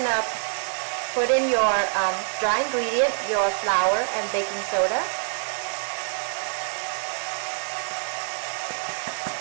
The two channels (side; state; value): left; silent; digital silence